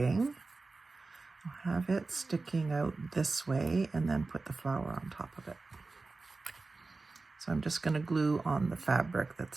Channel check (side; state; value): left; quieter; 3.7 dB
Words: I'll have it sticking out this way and then put the flower on top of it. So I'm just going to glue on the fabric